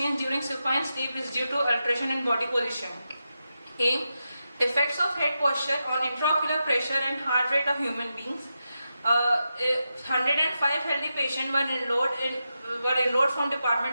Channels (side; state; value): both; inverted; correlation -0.89